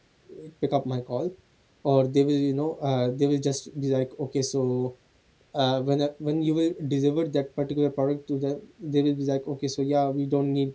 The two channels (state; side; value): identical; both; correlation 1.00